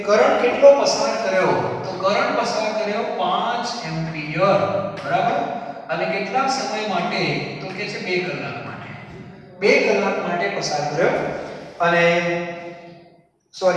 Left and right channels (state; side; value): identical; both; correlation 1.00